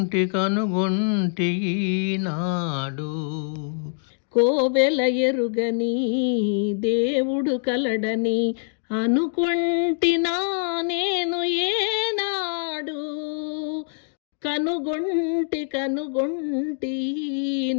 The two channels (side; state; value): right; silent; 62 dB below the other